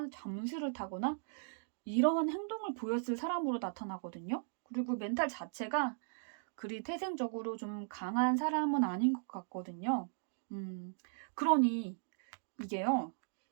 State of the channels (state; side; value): silent; left; digital silence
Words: 잠수를 타거나 이런 행동을 보였을 사람으로 나타나거든요. 그리고 멘탈 자체가 그리 태생적으로 좀 강한 사람은 아닌 것 같거든요. 그러니 이게요.